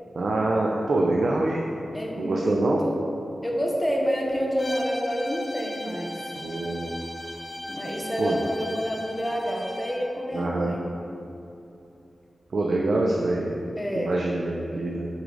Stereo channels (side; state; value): both; normal; correlation 0.93